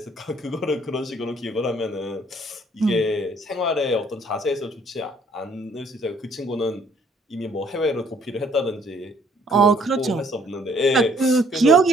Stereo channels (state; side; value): normal; both; correlation 0.63